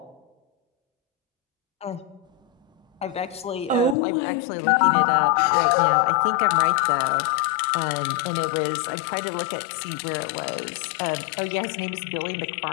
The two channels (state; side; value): drops out; right; at 4.0 s